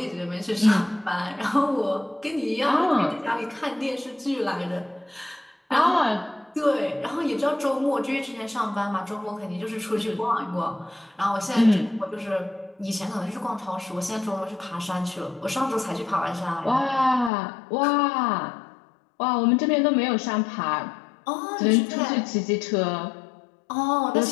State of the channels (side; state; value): right; drops out; at 17.3 s